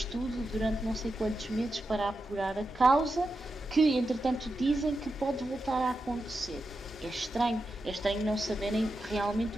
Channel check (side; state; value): both; normal; correlation 0.89